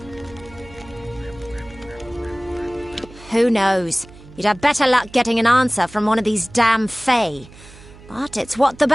Who knows? You'd have better luck getting an answer from one of these damn fae. But it's what the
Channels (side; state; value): right; noise; hum, 20 dB below the sound